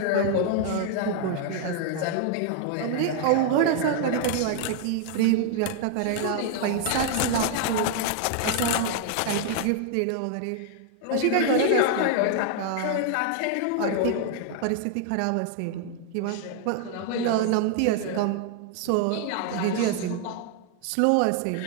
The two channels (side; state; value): both; different; correlation 0.00